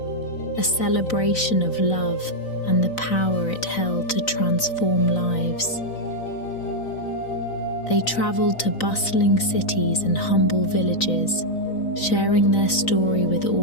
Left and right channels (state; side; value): late; right; 3.9 ms